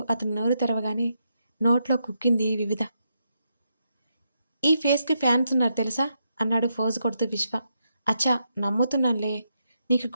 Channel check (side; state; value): both; inverted; correlation -0.81